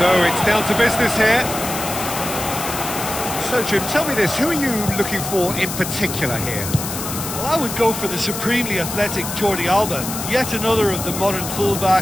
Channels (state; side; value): noise; left; hiss, 6 dB below the sound